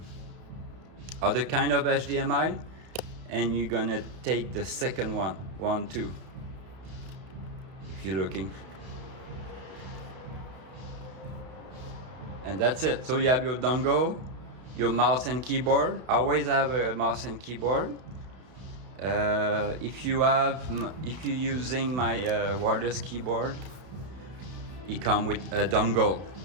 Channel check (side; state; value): left; late; 32 ms